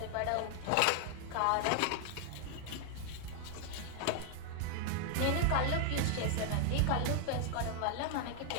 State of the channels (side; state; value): both; different; correlation 0.00